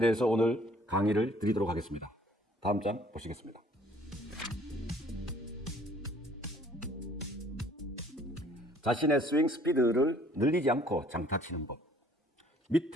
오늘 강의를 드리도록 하겠습니다. 다음 장 보시겠습니다. 자신의 스윙 스피드를 늘리지 않고 장타 치는 법.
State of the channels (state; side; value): normal; both; correlation 0.58